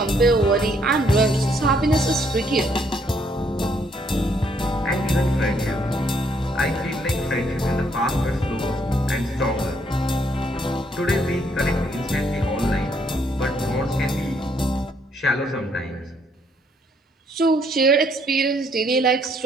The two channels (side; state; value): both; normal; correlation 0.69